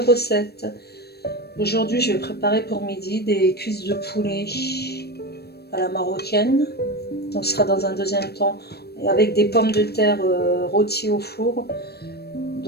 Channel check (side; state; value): right; late; 0.47 ms